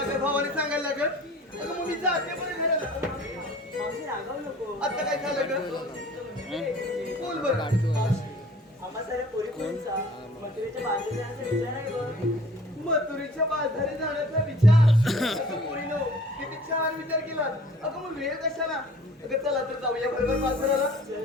काय भावाने सांगायला लागत अगं मग मी जाते बरं घराला मावशी रागावू नको. आता काय झालं का बोल बरं आम्हा साऱ्या पोरी-पोरींचा मथुरेच्या बाजूला जाण्याचा विचार आहे बघ. मथुरेच्या बाजारी जाण्याचा विचार अगं पोरीनो किती छान विचार केला अगं मग वेळ कशाला अगं चला तर जाऊया बरोबर बाजाराला चल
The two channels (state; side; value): normal; both; correlation 0.49